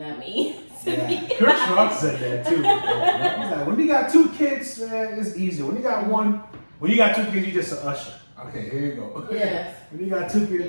me. Yeah. Kurt Schrock said that too. He's like, when you got 2 kids, man, it's easier. When you got 2 kids, you just an usher. Okay, here you go. Yes. When you got 2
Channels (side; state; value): both; inverted; correlation -1.00